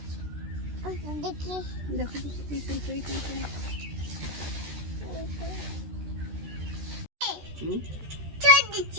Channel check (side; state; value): left; late; 13 ms